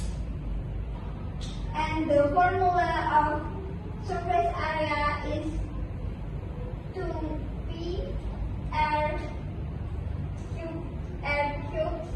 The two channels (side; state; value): both; identical; correlation 1.00